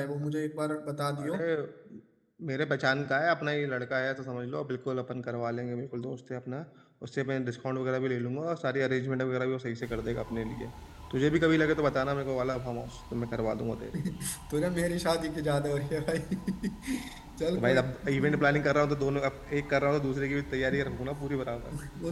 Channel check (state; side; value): identical; both; correlation 1.00